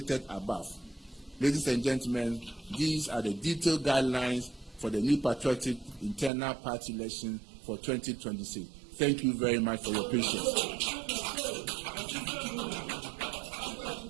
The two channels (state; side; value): drops out; left; at 6.3 s